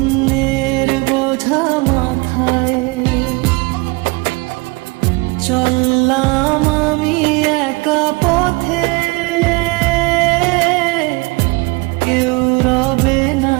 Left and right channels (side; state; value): left; quieter; 26.5 dB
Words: বোঝা মাথায় চললাম আমি একা পথে, কেউ রবে না